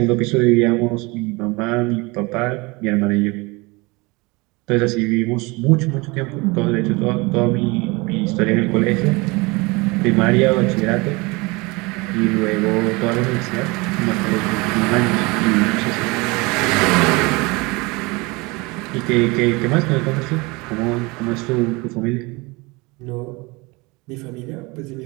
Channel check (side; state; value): left; quieter; 25.4 dB